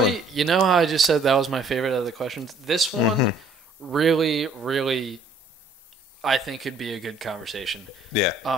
going. you know how I just said that was my favorite of the questions? This one really, really, I think could be a good conversation. Yeah.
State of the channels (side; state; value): both; normal; correlation 0.60